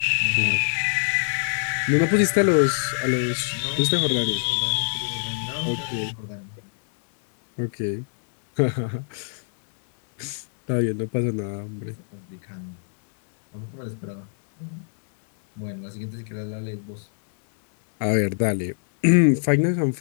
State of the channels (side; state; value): right; silent; 58 dB below the other